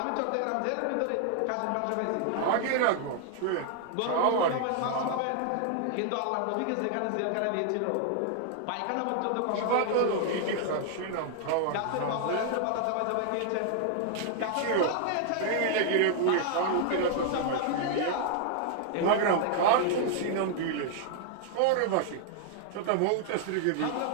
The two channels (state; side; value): different; both; correlation 0.00